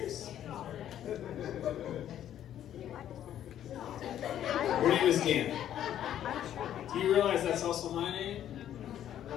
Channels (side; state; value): right; quieter; 10.9 dB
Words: Your name is Dan. Do you realize that's also my name?